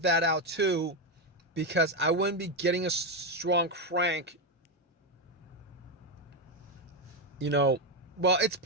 out too, because I wouldn't be getting a strong crank. Well, it's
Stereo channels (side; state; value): both; normal; correlation 0.07